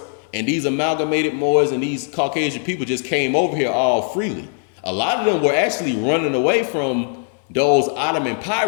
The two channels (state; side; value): silent; right; 57 dB below the other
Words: and these amalgamated Moors and these Caucasian people just came over here all freely. A lot of them were actually running away from those Ottoman